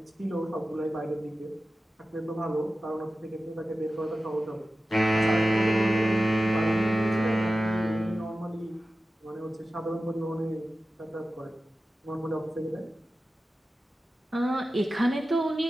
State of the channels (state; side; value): normal; both; correlation 0.94